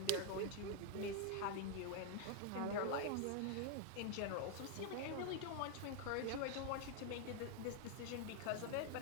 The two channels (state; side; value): different; both; correlation 0.01